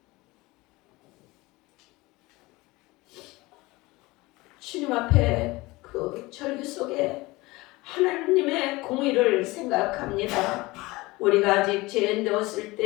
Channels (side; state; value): right; quieter; 21.6 dB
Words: 주님 앞에 그 절규 속에 하나님의 공의를 생각합니다. 우리가 아직 죄인되었을